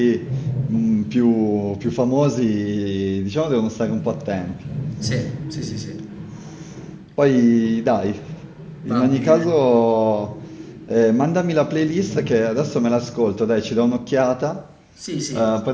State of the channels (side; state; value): both; identical; correlation 1.00